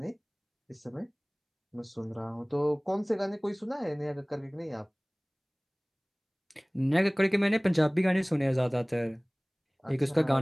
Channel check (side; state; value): both; identical; correlation 1.00